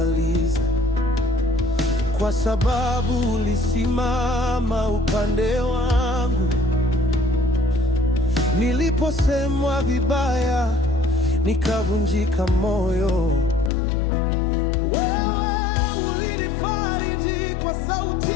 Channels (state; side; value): drops out; right; at 13.7 s